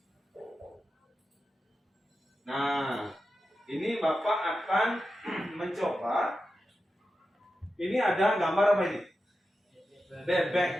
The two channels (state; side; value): normal; both; correlation 0.91